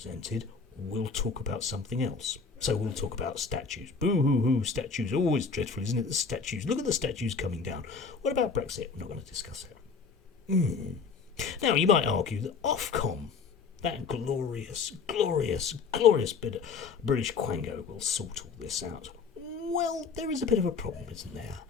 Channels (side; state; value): right; quieter; 5.2 dB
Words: we'll talk about something else. So we'll talk about statues. Boo-hoo-hoo, statues. Always dreadful, isn't it? The statues. Look at the statues coming down. What about Brexit? We're not going to discuss it. Now, you might argue that Ofcom, that glorious bit of British quango, will sort all this out. Well, there is a bit of a problem, isn't there?